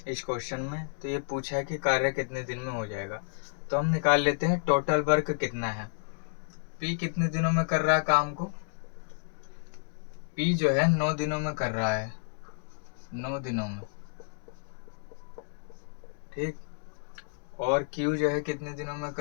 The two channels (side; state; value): right; silent; digital silence